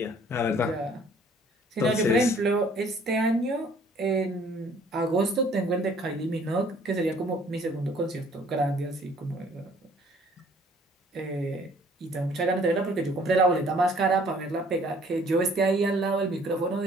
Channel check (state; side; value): normal; both; correlation 0.57